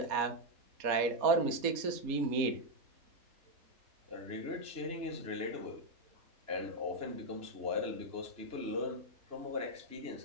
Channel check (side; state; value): left; late; 4.2 ms